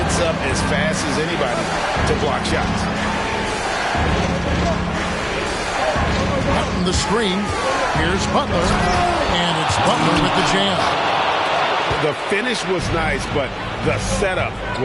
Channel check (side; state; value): both; identical; correlation 1.00